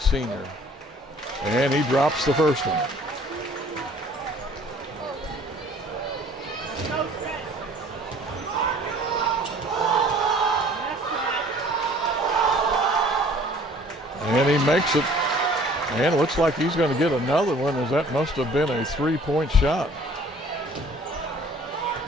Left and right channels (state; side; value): normal; both; correlation 0.53